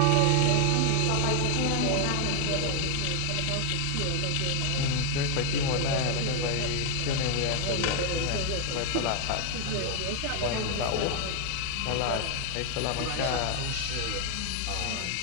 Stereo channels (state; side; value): different; both; correlation 0.00